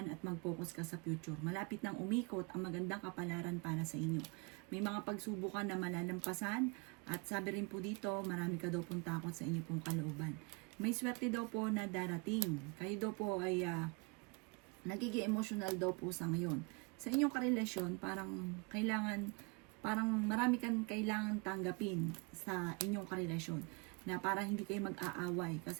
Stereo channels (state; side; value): quieter; left; 29.9 dB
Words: at mag-focus ka sa future. Malapit nang umikot ang magandang kapalaran para sa inyo. May mga pagsubukan na malalampasan at sabi rin po dito, marami ka daw pong takot sa inyo pong kalooban. May swerte daw po na darating. Kayo daw po ay nagiging emotional daw po sa ngayon. Sa inyong karelasyon, parang marami kang kailangan tanggapin sa inyong karelasyon na para hindi kayo mag-aaway